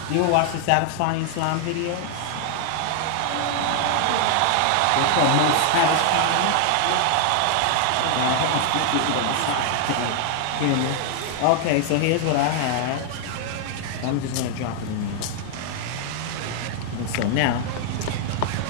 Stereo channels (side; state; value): both; different; correlation 0.00